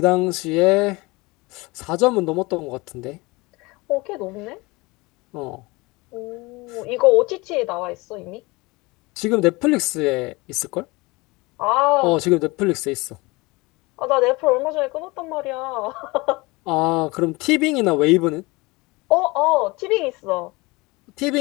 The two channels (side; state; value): right; quieter; 23.8 dB